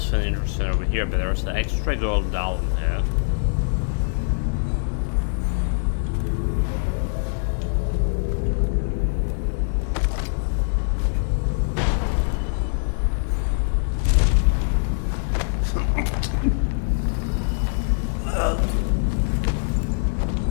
something interesting over here, but there's the extra gold down there.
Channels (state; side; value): silent; right; digital silence